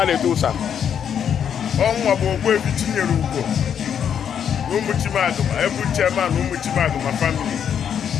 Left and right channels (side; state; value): right; quieter; 8.3 dB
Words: to Tusa. Ọnwa bụ ogbu ebi tinyere ugwo n'ụmụchimadụ ma ebu chairman ụmụchimadụ ma family